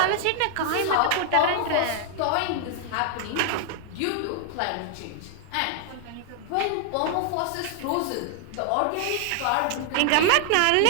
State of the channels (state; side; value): different; both; correlation 0.00